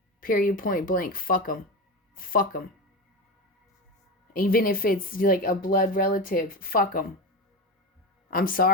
Period, point blank. Fuck them. Fuck them. Even if it's like a blood relative, fuck them. I'm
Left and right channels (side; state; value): both; normal; correlation 0.21